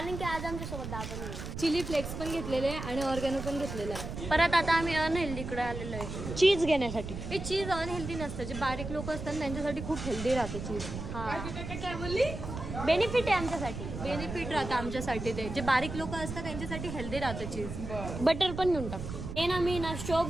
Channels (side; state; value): right; noise; rumble, 7 dB below the sound